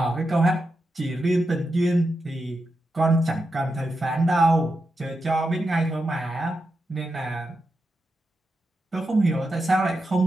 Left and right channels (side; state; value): both; normal; correlation 0.88